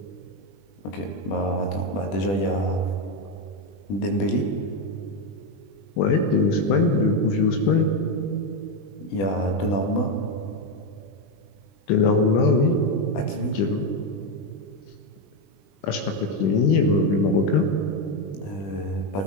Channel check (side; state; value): right; late; 20 ms